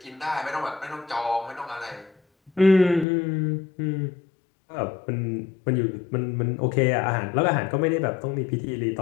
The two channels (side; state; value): right; drops out; at 3.1 s